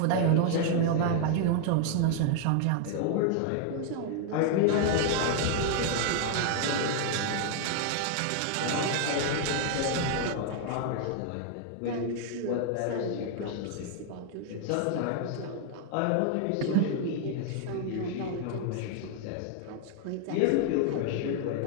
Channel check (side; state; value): both; different; correlation 0.00